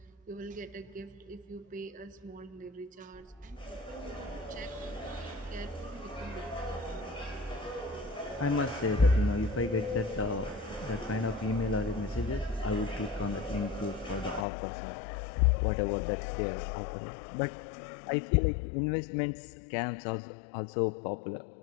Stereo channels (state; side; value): drops out; right; at 14.5 s